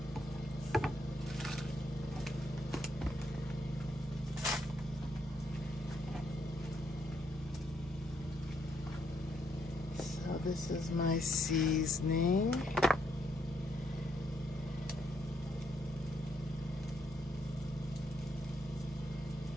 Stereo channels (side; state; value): both; normal; correlation 0.75